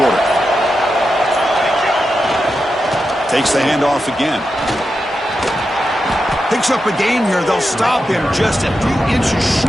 Takes the handoff again. Picks up a gain here. They'll stop him just a few inches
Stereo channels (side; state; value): both; normal; correlation 0.89